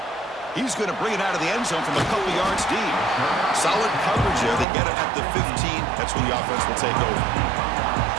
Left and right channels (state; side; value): drops out; left; at 4.7 s